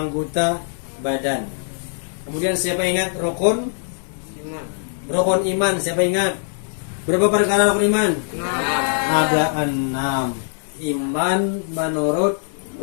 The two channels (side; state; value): right; silent; digital silence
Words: badan. Kemudian siapa ingat rukun? Iman. Rukun iman. Siapa ingat? Berapa perkara rukun iman? Ada 6. Iman menurut